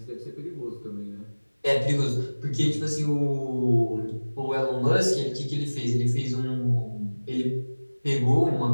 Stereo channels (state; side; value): inverted; both; correlation -1.00